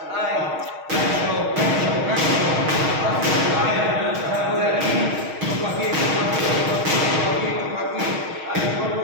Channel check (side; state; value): left; late; 6.4 ms